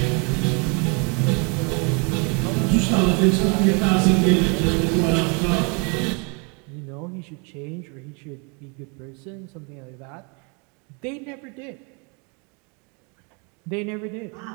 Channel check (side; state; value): left; quieter; 33.8 dB